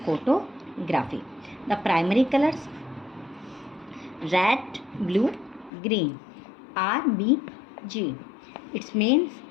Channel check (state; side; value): drops out; right; at 5.7 s